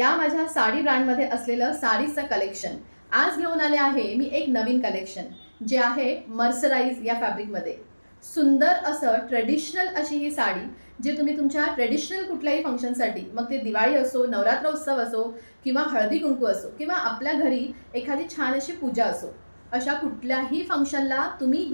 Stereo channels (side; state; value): both; inverted; correlation -1.00